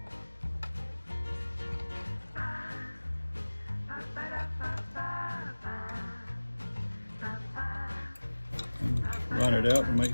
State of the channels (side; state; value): both; inverted; correlation -1.00